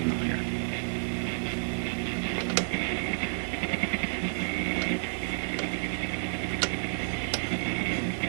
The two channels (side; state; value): left; silent; digital silence